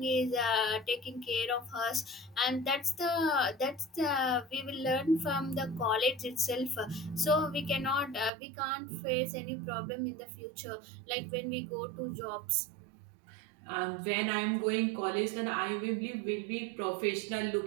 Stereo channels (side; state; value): left; drops out; at 8.3 s